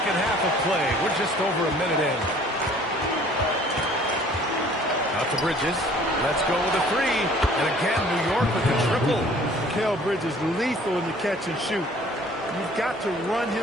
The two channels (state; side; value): normal; both; correlation 0.53